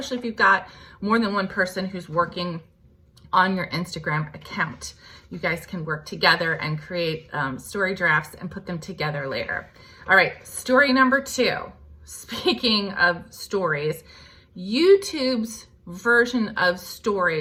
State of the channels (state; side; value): identical; both; correlation 1.00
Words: if you've got more than one person who's working on your Instagram account. You guys can work together and create story drafts and put them together later. All right, story number 2. Speaking of stories, YouTube's version of